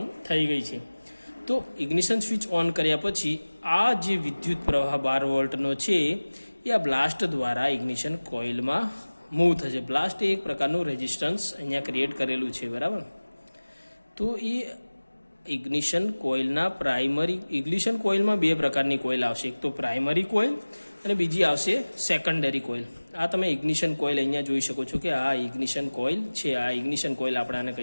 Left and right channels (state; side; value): inverted; both; correlation -1.00